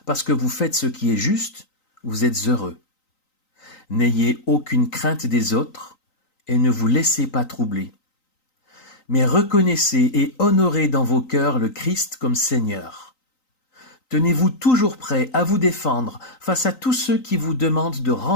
parce que vous faites ce qui est juste, vous êtes heureux. N'ayez aucune crainte des autres et ne vous laissez pas troubler. Mais reconnaissez et honorez dans vos cœurs le Christ comme Seigneur. Tenez-vous toujours prêt à vous défendre face à tous ceux qui vous demandent de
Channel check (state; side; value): late; right; 3.9 ms